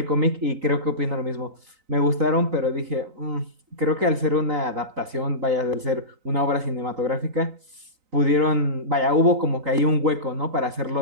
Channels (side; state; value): left; late; 3.9 ms